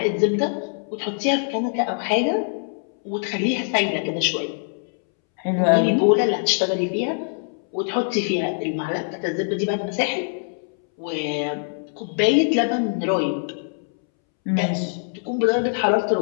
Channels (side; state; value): right; silent; 63 dB below the other